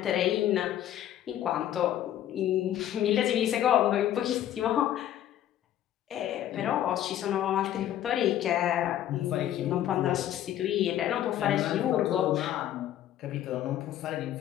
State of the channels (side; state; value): right; quieter; 11.9 dB